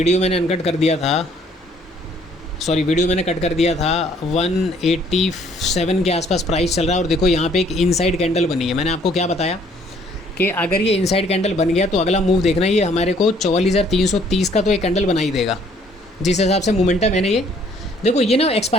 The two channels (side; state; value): both; normal; correlation 0.61